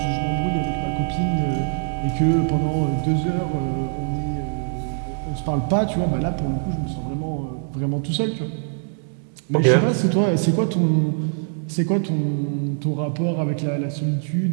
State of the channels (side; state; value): left; silent; digital silence